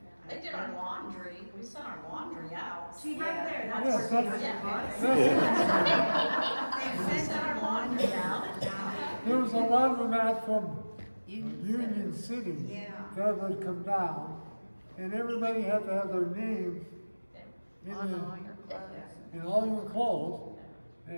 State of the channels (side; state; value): both; inverted; correlation -1.00